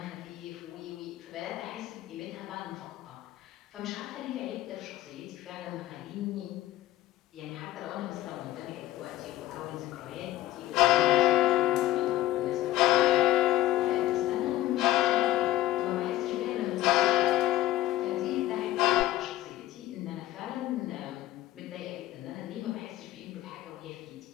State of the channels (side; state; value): right; quieter; 15.1 dB